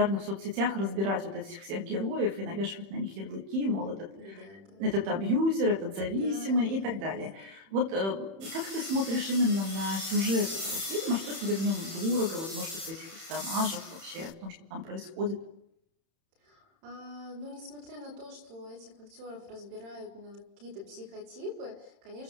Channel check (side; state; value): left; late; 31 ms